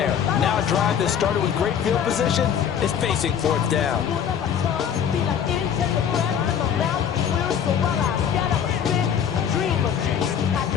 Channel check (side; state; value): right; quieter; 8.3 dB